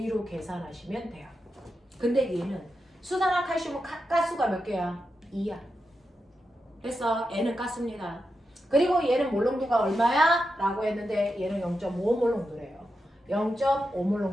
계산하시면 돼요. 근데 얘는 수산화 칼슘은 가스가 몇 개야? 2야. 됐어. N은 가스입니다. 그리고 얘는 몰농도가 얼마야? 라고 했는데 얘는 0.5몰 농도래요. 0.5몰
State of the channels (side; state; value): both; normal; correlation 0.88